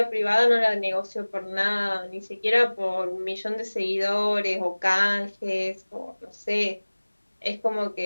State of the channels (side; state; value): both; inverted; correlation -1.00